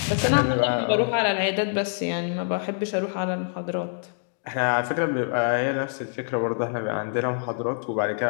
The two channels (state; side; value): silent; right; digital silence